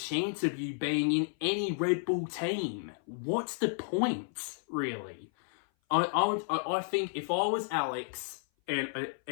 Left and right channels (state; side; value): silent; right; 56 dB below the other